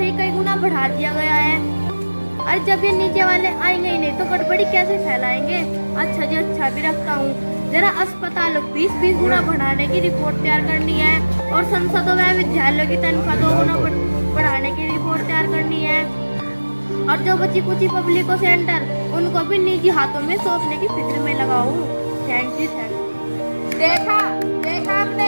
ही कई गुना बढ़ा दिया गया है। अरे जब ये नीचे वाले आएंगे ही नहीं तो गड़बड़ी कैसे फैलाएंगे? अच्छा जी, अच्छा भी रखता हूँ। जरा अस्पतालों 20 गुना बढ़ाने की रिपोर्ट तैयार करनी है और संसदों में विद्यालयों की तनख्वाह 2 गुना बढ़ाने की रिपोर्ट तैयार करनी है। और जो बची कुछ पब्लिक सेंटर, उनको भी निजी हाथों में सौंपने की फिक्र में लगाऊं। Thank you. देखा आपने,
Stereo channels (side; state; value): both; inverted; correlation -1.00